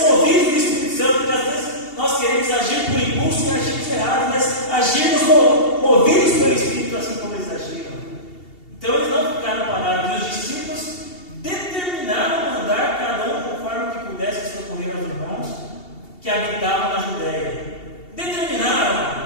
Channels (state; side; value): late; right; 2.7 ms